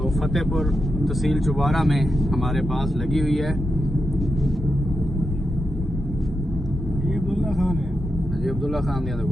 फतेहपुर तहसील चुबारा में हमारे पास लगी हुई है। अब्दुल्ला खान दी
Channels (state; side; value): normal; both; correlation 0.87